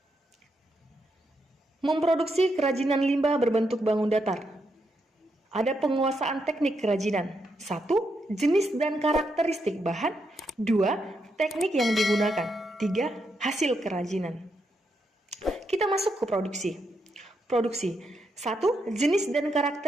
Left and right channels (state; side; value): normal; both; correlation 0.81